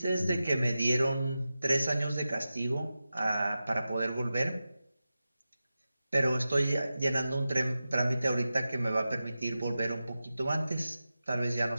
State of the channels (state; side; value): inverted; both; correlation -0.93